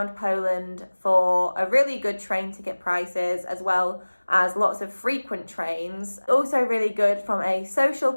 Poland for a really good train ticket prices, as well as lots of frequent trains. Also really good from a social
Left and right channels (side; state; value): both; inverted; correlation -1.00